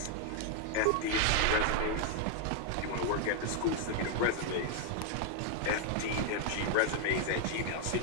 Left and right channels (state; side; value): different; both; correlation 0.00